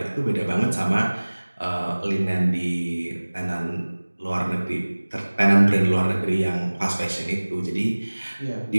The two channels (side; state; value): both; inverted; correlation -1.00